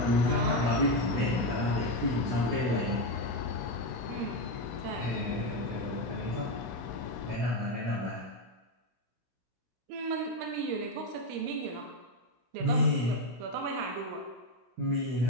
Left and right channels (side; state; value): left; late; 16 ms